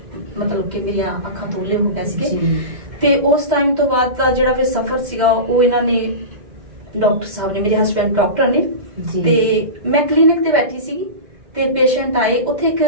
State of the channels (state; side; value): late; left; 2.1 ms